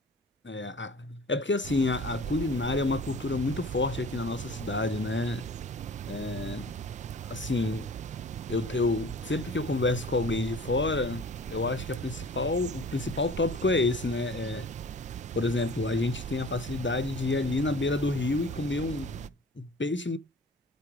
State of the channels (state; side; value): normal; both; correlation 0.44